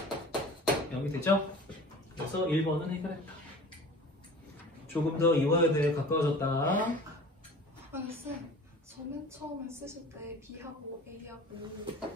0이 되죠? 그래서 1번은 해결했다. 조금 더 이화여대에 가까워졌다. 아니 쌤, 저 맨 처음에 쓰실 때 B하고 A하고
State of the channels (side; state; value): both; normal; correlation 0.42